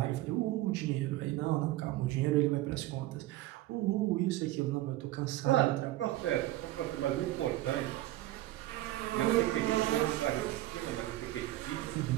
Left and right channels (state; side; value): quieter; left; 16.0 dB